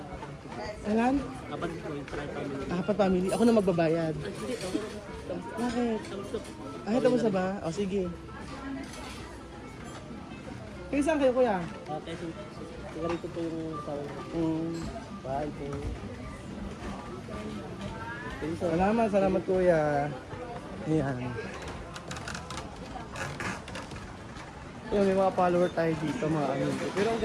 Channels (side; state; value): both; identical; correlation 1.00